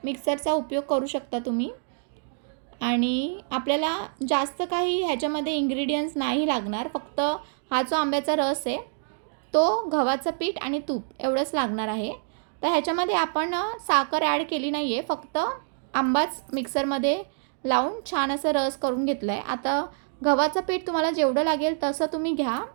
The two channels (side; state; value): left; silent; digital silence